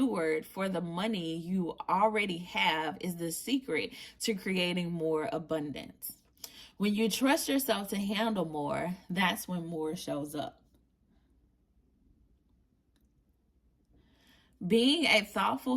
for the money you already have is the secret to creating more abundance. When you trust yourself to handle more, that's when more shows up. Being a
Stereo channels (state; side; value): identical; both; correlation 1.00